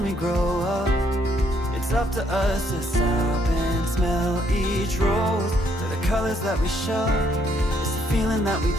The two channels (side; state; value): both; normal; correlation 0.70